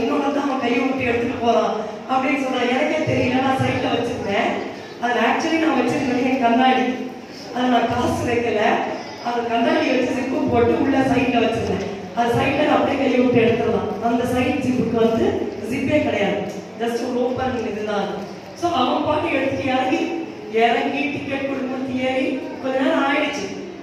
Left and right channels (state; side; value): identical; both; correlation 1.00